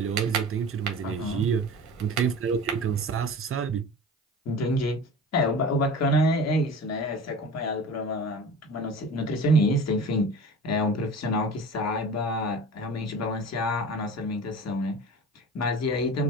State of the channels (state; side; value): normal; both; correlation 0.36